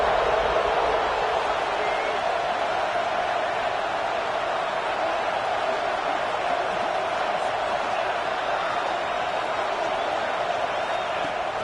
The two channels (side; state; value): both; identical; correlation 1.00